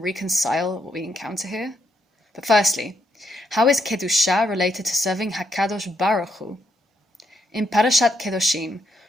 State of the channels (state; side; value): normal; both; correlation 0.76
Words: reconcile what we encounter here? But firstly, how is Kedusha related to serving HaKadosh Baruch Hu? In Parashat Kedoshim,